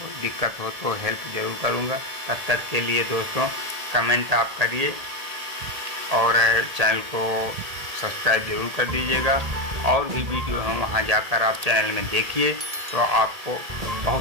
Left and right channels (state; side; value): late; left; 1.7 ms